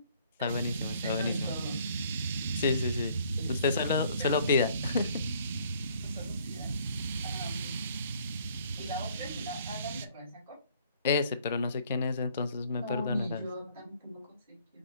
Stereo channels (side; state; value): both; inverted; correlation -0.60